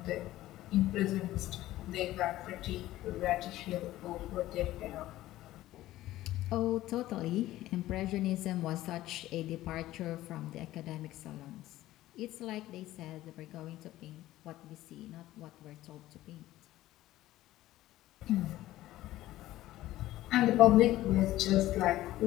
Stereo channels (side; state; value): right; quieter; 15.4 dB